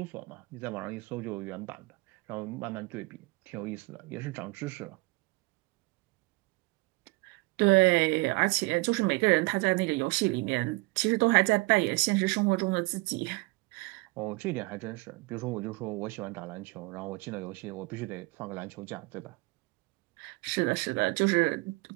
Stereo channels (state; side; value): quieter; left; 24.7 dB